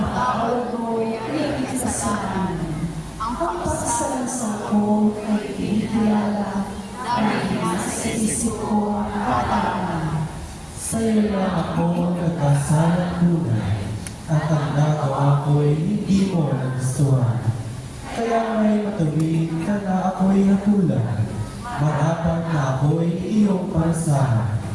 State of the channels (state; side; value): identical; both; correlation 1.00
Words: mo ang aking kasalanan. Ang pagsasalasang ko ay itinilala dahil nasa isip ko ang katangan. Sa iyo lang ako nagkasalang tunay, at ang nagawa ko'y hindi mo nagustuhan. Kaya may matuwid ka na ako'y hatulan, marapat na ako'y iyong parasahan.